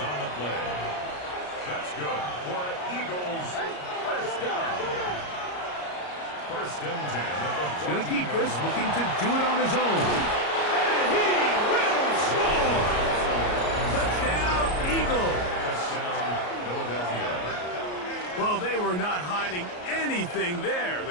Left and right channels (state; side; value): late; right; 33 ms